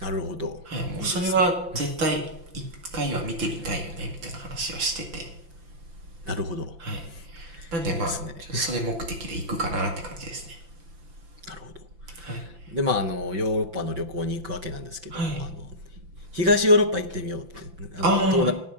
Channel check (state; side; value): late; left; 5.9 ms